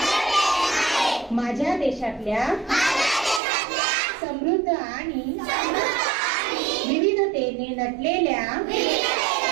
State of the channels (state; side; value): drops out; left; at 3.4 s